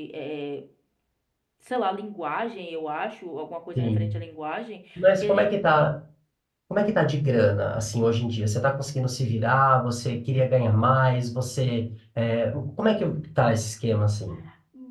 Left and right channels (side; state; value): both; identical; correlation 1.00